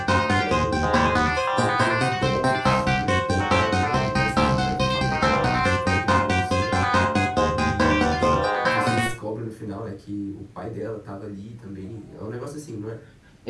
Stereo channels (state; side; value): identical; both; correlation 1.00